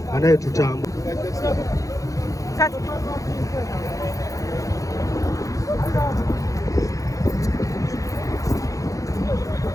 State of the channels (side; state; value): right; late; 0.16 ms